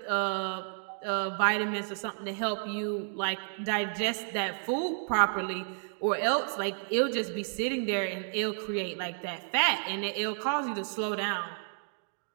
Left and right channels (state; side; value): silent; left; digital silence